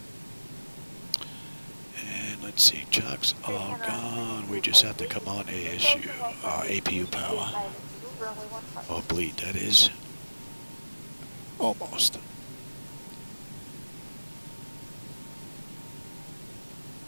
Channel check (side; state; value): both; inverted; correlation -1.00